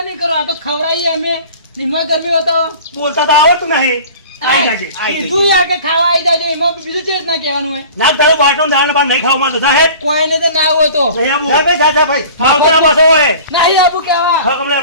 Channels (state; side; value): inverted; both; correlation -0.43